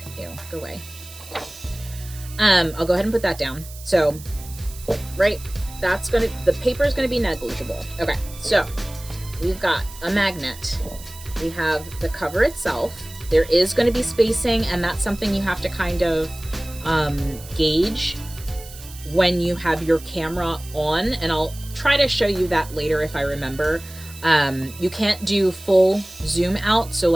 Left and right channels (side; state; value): right; noise; hiss, 17 dB below the sound